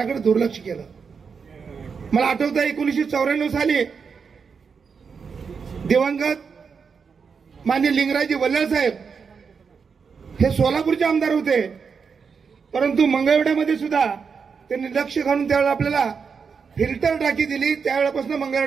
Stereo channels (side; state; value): left; quieter; 5.8 dB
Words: दुर्लक्ष केलं. मला आठवतं 1994 साली दिवंगत माननीय लिंगराजी वल्लळ साहेब हे सोलापूरचे आमदार होते, परंतु मंगळवेढ्यामध्ये सुद्धा त्यांनी लक्ष घालून त्यावेळेला आपल्याला फिल्टर टाकी दिली. त्यावेळेपासून